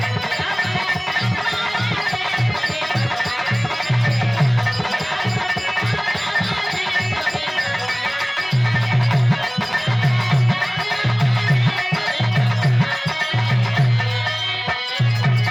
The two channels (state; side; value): identical; both; correlation 1.00